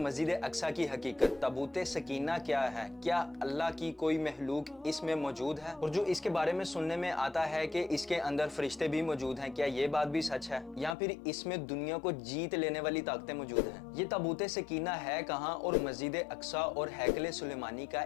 अक्सा की हकीकत, ताबूत सकीना क्या है, क्या अल्लाह की कोई महलूक इसमें मौजूद है? और जो इसके बारे में सुनने में आता है कि इसके अंदर फरिश्ते भी मौजूद हैं, क्या ये बात भी सच है या फिर इसमें दुनिया को जीत लेने वाली ताकतें मौजूद हैं? ये ताबूत सकीना है कहाँ और मस्जिद अक्सा और हैकल सुलेमानी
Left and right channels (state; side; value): drops out; right; at 11.0 s